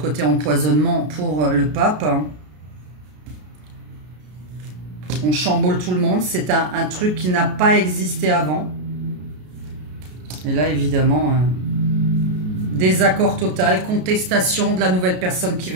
empoisonnement pour le pape. On chamboule tout le monde. C'est un truc qui n'a pas existé avant. Et là, évidemment, désaccord total, contestation de la nouvelle personne qui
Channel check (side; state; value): left; late; 33 ms